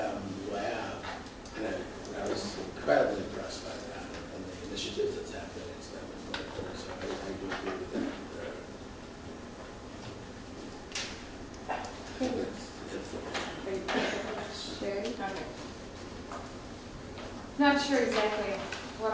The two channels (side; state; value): both; identical; correlation 1.00